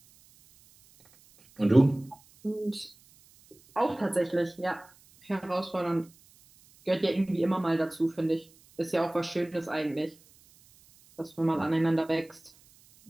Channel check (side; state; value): right; noise; hiss, 28 dB below the sound